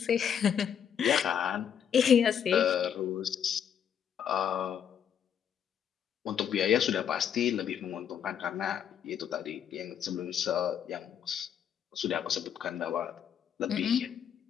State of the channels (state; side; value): quieter; right; 8.6 dB